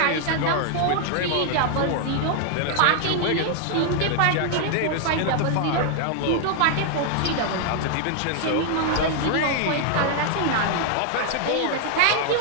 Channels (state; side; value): different; both; correlation 0.00